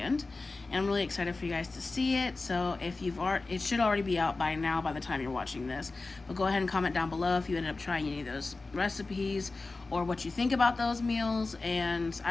And I'm really excited for you guys to see it. So if it should already be out by now by the time you're watching this. But go ahead and comment down below if you ended up trying any of those recipes or what you think about those meals. And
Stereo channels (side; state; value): right; quieter; 3.5 dB